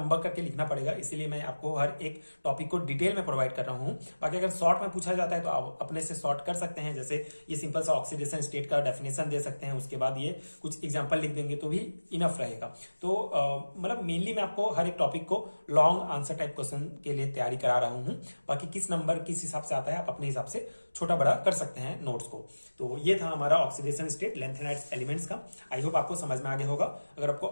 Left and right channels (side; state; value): both; inverted; correlation -1.00